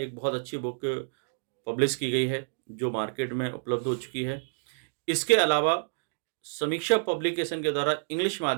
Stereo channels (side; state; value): left; silent; digital silence